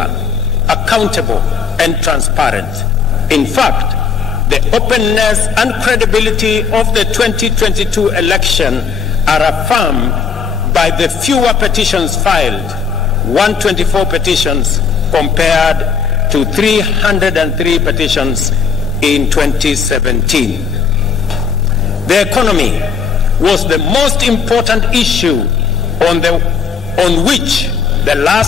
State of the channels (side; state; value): right; quieter; 6.1 dB